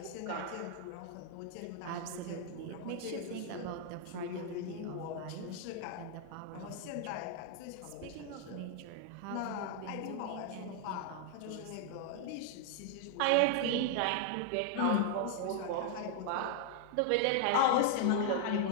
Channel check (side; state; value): both; different; correlation 0.00